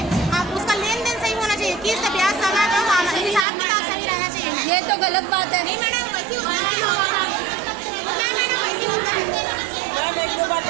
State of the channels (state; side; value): drops out; left; at 3.5 s